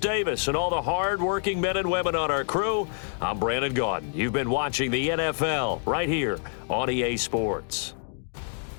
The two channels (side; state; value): right; silent; 60 dB below the other